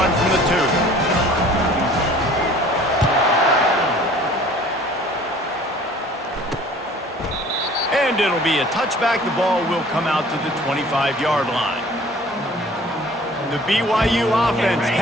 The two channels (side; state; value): both; normal; correlation 0.50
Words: from the 2. And it'll be a touchback. The ball will come out to the 25-yard line. The BYU offense